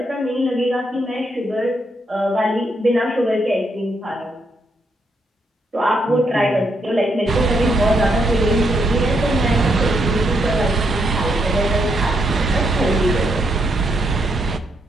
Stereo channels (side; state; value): both; normal; correlation 0.78